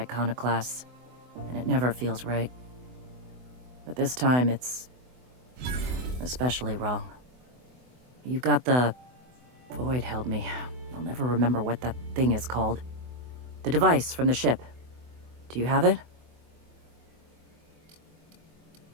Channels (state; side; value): late; left; 24 ms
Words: and it never feels right. But this time, it's especially wrong. You've got the... Void held me. I'll never remember what that thing is called. The device from the ship. Do you have it?